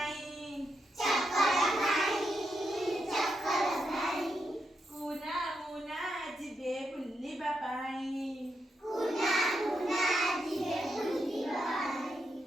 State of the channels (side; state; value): both; normal; correlation 0.83